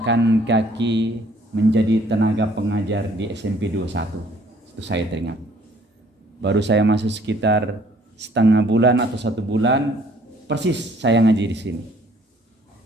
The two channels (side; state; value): both; normal; correlation 0.60